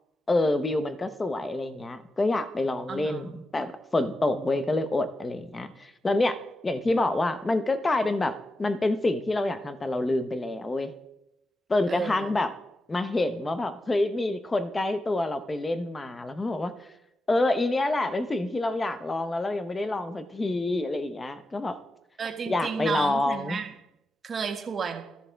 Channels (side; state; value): both; normal; correlation 0.90